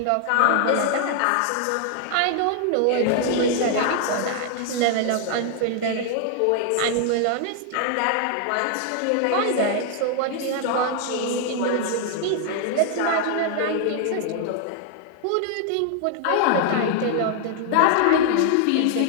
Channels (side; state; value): both; different; correlation 0.00